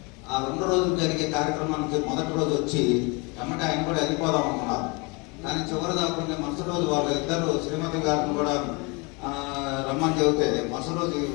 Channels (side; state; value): right; quieter; 28.9 dB